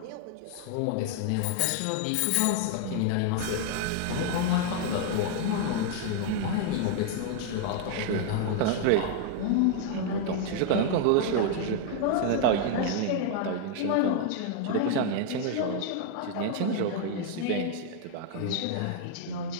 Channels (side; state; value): both; different; correlation 0.00